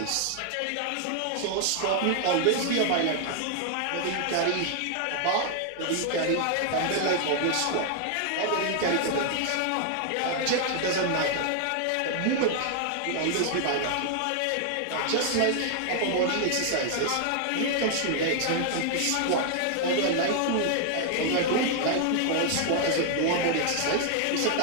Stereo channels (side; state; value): both; different; correlation 0.00